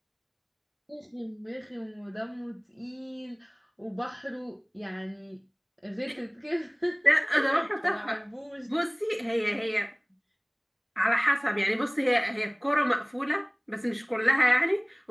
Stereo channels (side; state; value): both; identical; correlation 1.00